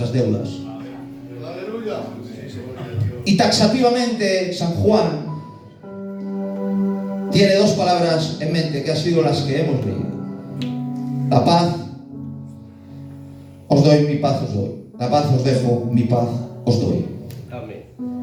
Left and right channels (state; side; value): identical; both; correlation 1.00